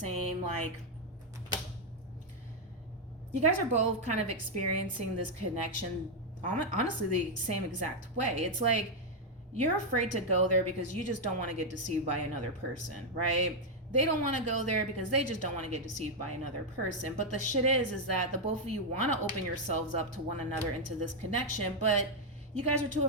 like, you guys are both kind of experiencing this connection, honestly, the same exact way. It's like, you're afraid to go there because you just don't want to get deceived by another person, right? They don't want to go there because they just don't want to get deceived by another person. But the shit is that the both of you want to open yourselves up to one another into this connection, but you guys are too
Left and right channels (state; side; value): normal; both; correlation 0.00